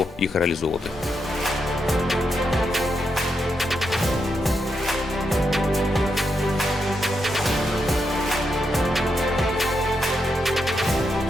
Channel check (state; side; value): normal; both; correlation 0.83